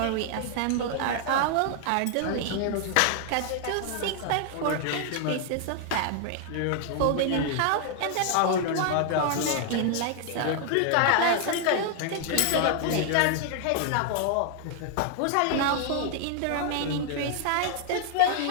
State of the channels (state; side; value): different; both; correlation 0.00